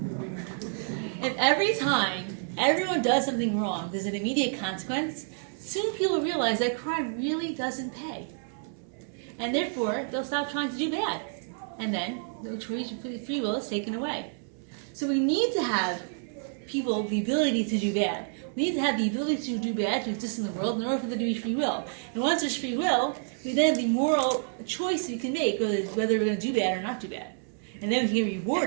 If every time everyone does something wrong, there's an immediate consequence, soon people realize that crime really doesn't pay. And therefore, they'll stop trying to do bad. And then the choice for free will is taken away. So we need to have people the ability to do bad. We need to have the ability to do bad to exist in the world in order for there to be free will. And once there's free will, we then have the moral choice we can make whether we're going to do bad or not do bad. And then we can get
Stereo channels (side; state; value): left; silent; 59 dB below the other